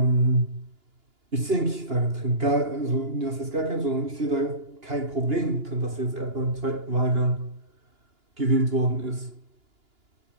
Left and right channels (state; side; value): late; left; 2.9 ms